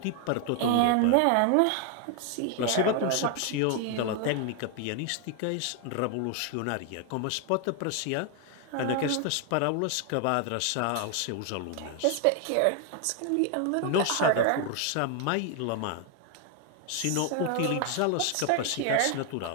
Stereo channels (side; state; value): both; different; correlation 0.00